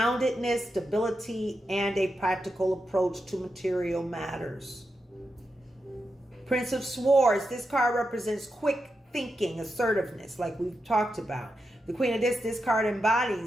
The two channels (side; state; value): both; normal; correlation 0.87